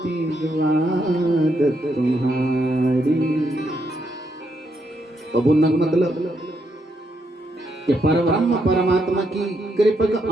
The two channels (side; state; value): both; normal; correlation 0.78